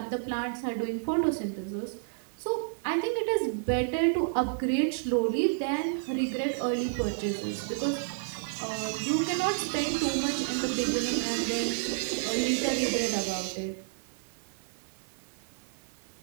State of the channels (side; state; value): left; silent; 58 dB below the other